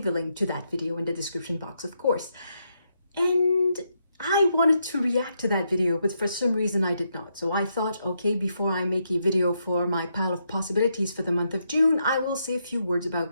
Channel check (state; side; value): inverted; both; correlation -0.80